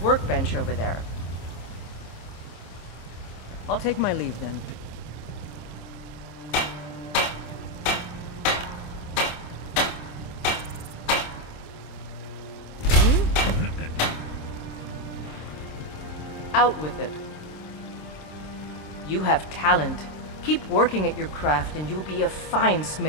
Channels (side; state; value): right; late; 26 ms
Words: over there. I'll take my leave then. Out with it. You have talent. Keep working at your craft and you'll be a fine